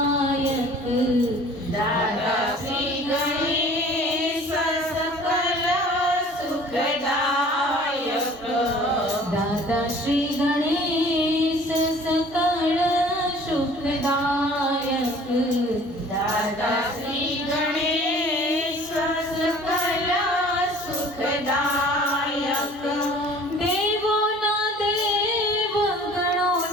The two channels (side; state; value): both; normal; correlation 0.49